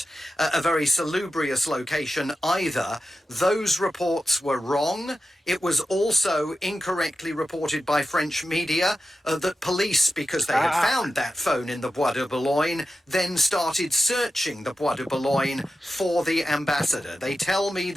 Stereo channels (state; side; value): normal; both; correlation 0.92